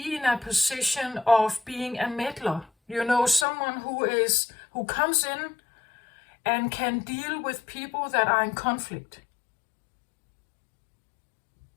in a position of being a meddler. You know, someone who comes in and can deal with people that are in conflict.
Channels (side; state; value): right; drops out; at 3.5 s